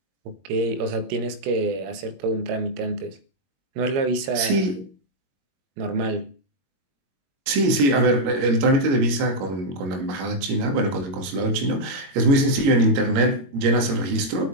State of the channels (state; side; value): late; left; 21 ms